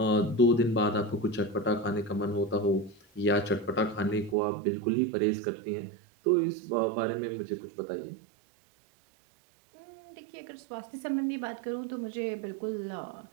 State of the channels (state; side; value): drops out; left; at 4.4 s